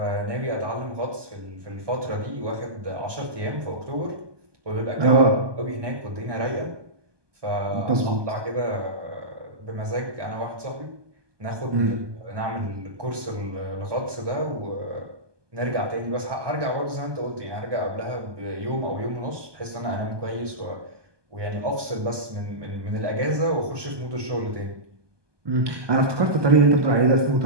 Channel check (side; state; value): left; late; 1.2 ms